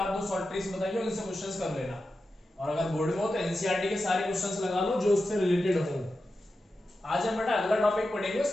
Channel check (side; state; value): both; normal; correlation 0.91